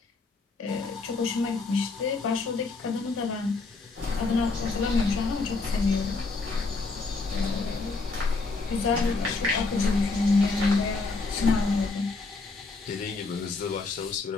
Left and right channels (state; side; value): quieter; right; 3.8 dB